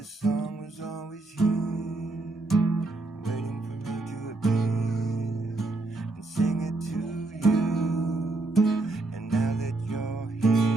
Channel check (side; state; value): left; quieter; 3.1 dB